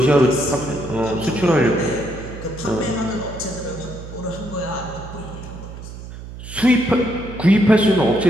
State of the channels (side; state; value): right; noise; hum, 12 dB below the sound